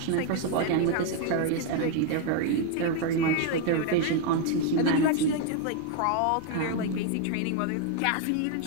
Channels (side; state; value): both; different; correlation 0.00